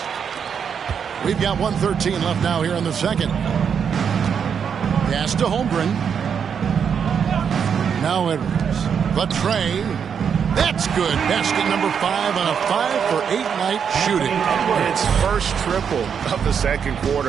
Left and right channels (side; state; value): left; quieter; 7.2 dB